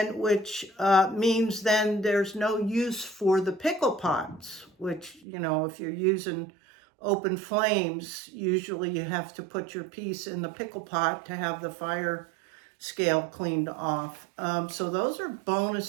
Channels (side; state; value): left; drops out; at 5.2 s